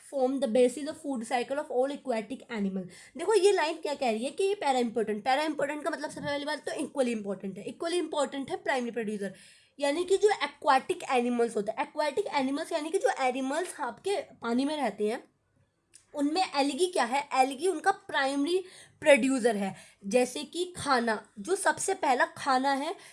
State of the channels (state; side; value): identical; both; correlation 1.00